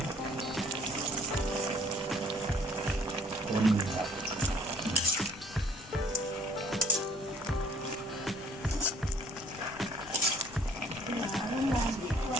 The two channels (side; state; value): both; normal; correlation 0.58